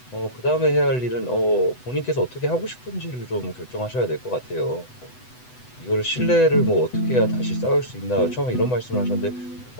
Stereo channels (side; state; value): right; late; 8.0 ms